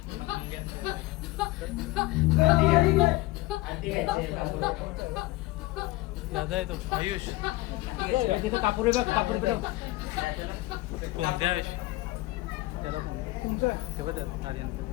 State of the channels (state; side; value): quieter; right; 19.5 dB